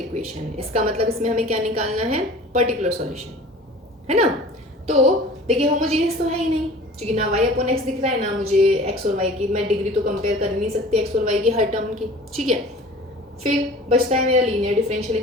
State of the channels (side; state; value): both; normal; correlation 0.44